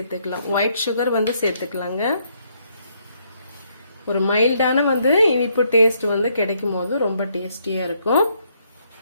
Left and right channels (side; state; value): both; inverted; correlation -0.72